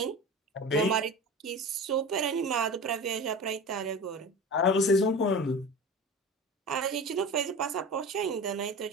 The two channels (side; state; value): both; normal; correlation 0.32